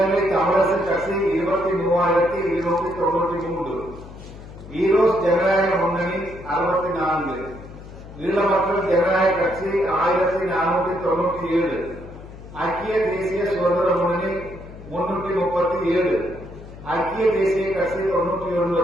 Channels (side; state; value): left; noise; hum, 16 dB below the sound